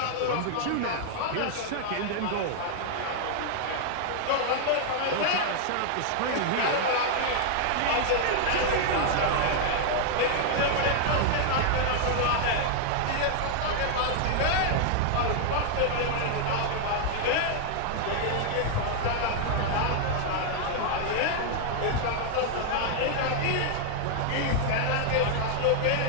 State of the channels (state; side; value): different; both; correlation 0.00